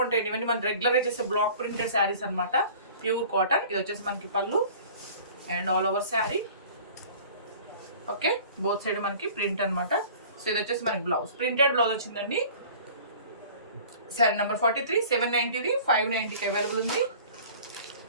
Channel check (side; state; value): both; inverted; correlation -0.46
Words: ఇవన్నీ మనం రెగ్యులర్గా చేసే బ్లాక్ ప్రింటెడ్ శారీస్ అనమాట. Pure cotton. ఇది వచ్చేసి మనకి పళ్ళు and all over sari. Okay, both side మనకి ప్రింట్ అనమాట. సో ఇది వచ్చేసి మనకి బ్లౌజ్, ప్రింటెడ్ బ్లౌజ్ వచ్చిందండి. శారీ నెంబర్ 43, 790ది, 590కి అవైలబుల్ ఉంది.